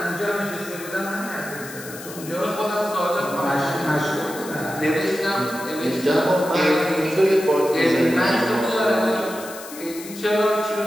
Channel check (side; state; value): left; noise; hiss, 14 dB below the sound